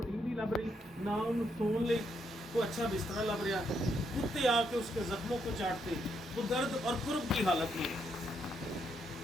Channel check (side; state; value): both; normal; correlation 0.77